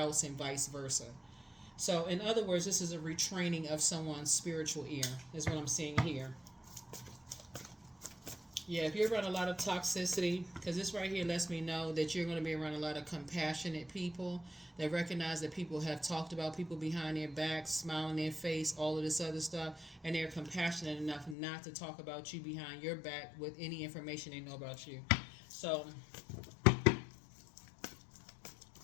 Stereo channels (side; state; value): right; drops out; at 21.4 s